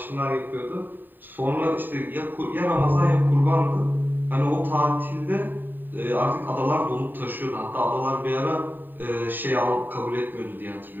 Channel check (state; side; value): late; left; 0.091 ms